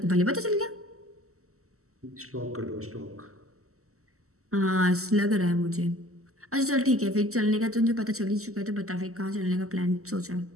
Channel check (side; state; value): left; late; 0.64 ms